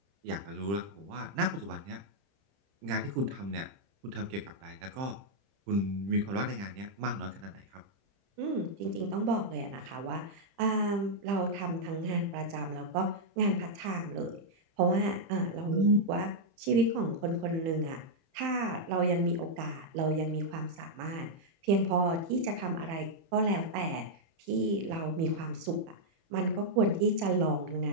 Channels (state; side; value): late; left; 30 ms